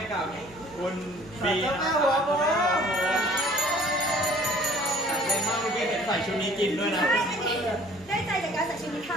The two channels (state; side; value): noise; right; hum, 23 dB below the sound